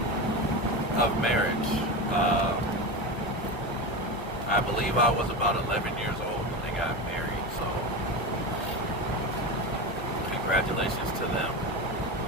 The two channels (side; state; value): both; normal; correlation 0.22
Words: of marriage. I believe I was about 11 years old when they got married, so congratulations to them.